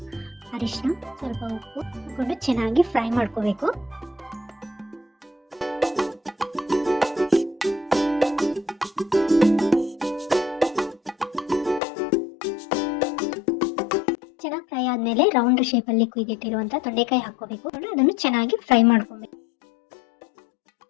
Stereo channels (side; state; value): right; drops out; at 11.8 s